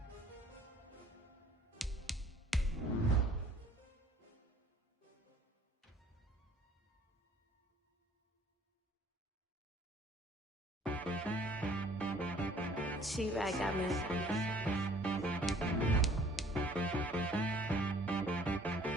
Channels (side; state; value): both; normal; correlation 0.55